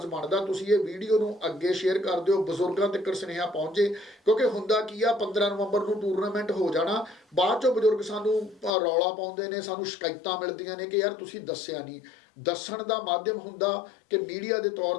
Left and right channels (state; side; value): drops out; right; at 8.7 s